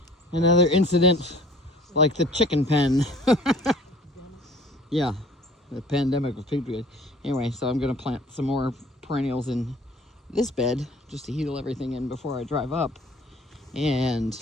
incident like the chicken pen. Yeah, the pandemic of pigweed. Anyway, so I'm gonna plant some more perennials in this bed just to heal everything in before I drive up, and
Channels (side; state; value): both; normal; correlation 0.50